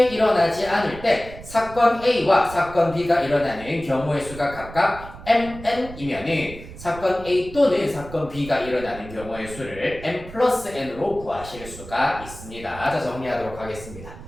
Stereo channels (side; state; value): right; noise; rumble, 15 dB below the sound